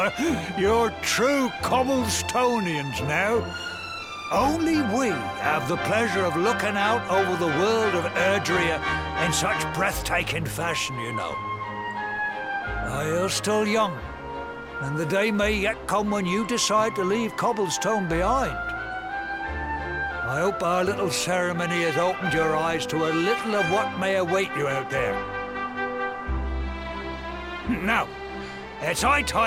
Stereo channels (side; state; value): both; identical; correlation 1.00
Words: You're true Cobblestonians now. Only we have the pleasure of looking out over the world of Erdrea in such breathtaking fashion, you know. You're still young, and the day may yet come when you decide to leave Cobblestone behind. I hope our little ceremony has opened your eyes to a little of what may await you out there. Now, it's high